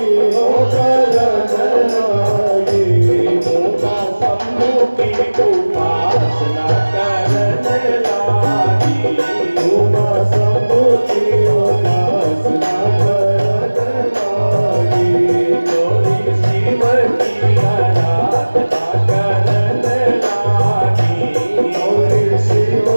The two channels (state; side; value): inverted; both; correlation -1.00